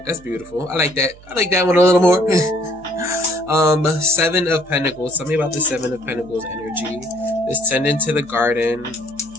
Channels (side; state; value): right; noise; hum, 23 dB below the sound